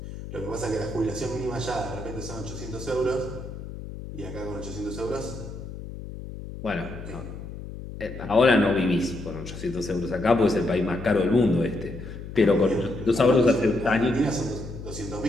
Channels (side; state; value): left; noise; hum, 10 dB below the sound